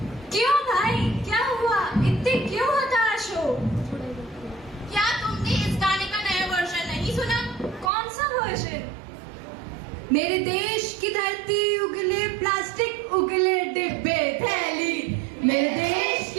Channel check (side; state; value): left; drops out; at 7.9 s